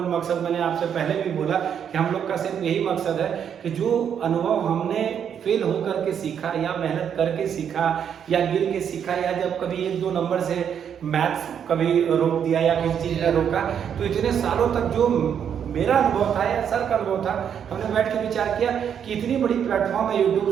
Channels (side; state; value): left; quieter; 8.3 dB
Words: मकसद, मैंने आपसे पहले भी बोला कि हम लोग का सिर्फ यही मकसद है कि जो अनुभव हमने फेल होकर के सीखा या मेहनत करके सीखा या गिर के सीखा या जब कभी 1-2 नंबर से मैथ्स कभी रोक दिया या किसी चीज़ ने रोका, तो इतने सालों तक जो मेरा अनुभव था या सर का अनुभव था, हमने बैठ के विचार किया कि इतनी बड़ी प्लेटफॉर्म है